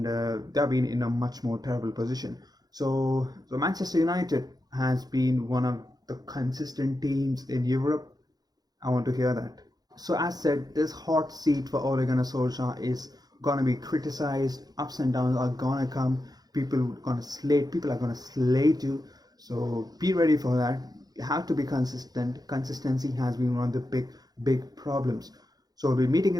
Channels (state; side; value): late; left; 0.19 ms